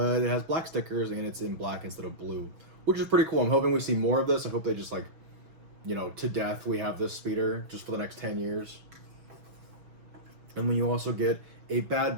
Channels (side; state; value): left; late; 6.1 ms